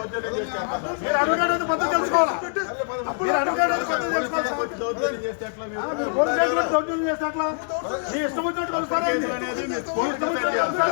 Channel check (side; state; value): right; silent; 62 dB below the other